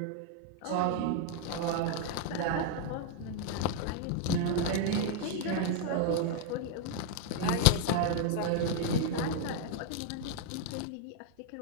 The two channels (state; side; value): different; both; correlation 0.00